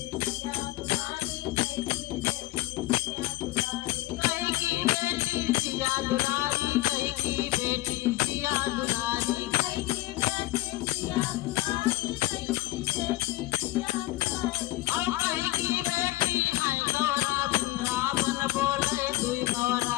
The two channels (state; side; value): quieter; right; 18.2 dB